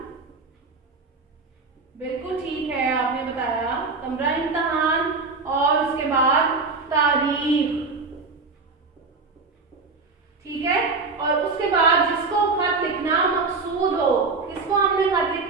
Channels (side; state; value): left; quieter; 4.1 dB